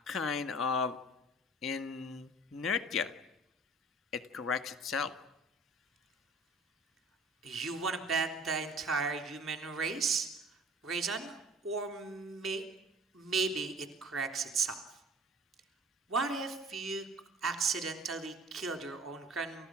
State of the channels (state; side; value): normal; both; correlation 0.47